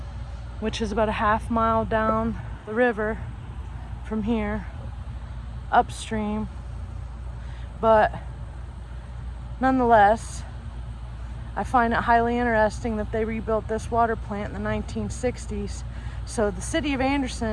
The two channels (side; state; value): both; identical; correlation 1.00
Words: which is about a half-mile down the river from here, upstream. But nonetheless, I find it highly interesting that they rebuilt this water plant in the 1960s. So the city of